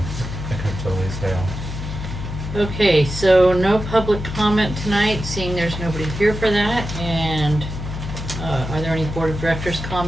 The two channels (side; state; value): left; noise; hum, 7 dB below the sound